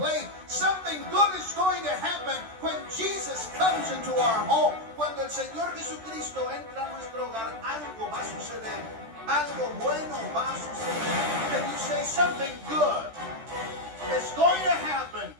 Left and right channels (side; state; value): left; late; 13 ms